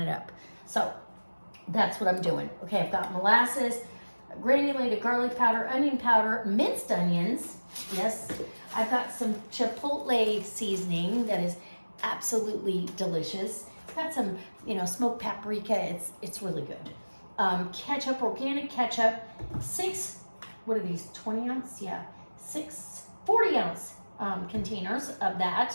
up. So that's what I'm doing. Okay, I've got molasses, granulated garlic powder, onion powder, minced onions. Yes, I've got some chipotle seasoning that is absolutely delicious. It's got some, smoked paprika. It's really good. Ketchup, organic ketchup, 6, what are these, 20 ounce? Yeah, 40 ounce containers of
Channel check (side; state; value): both; inverted; correlation -1.00